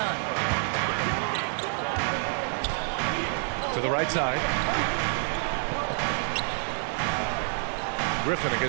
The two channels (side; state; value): left; silent; 59 dB below the other